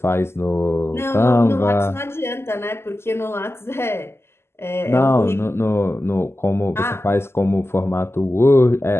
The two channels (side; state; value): right; late; 0.12 ms